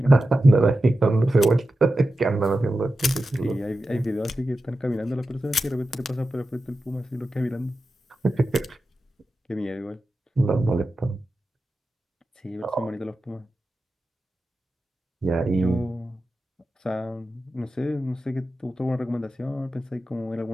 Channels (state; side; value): normal; both; correlation 0.92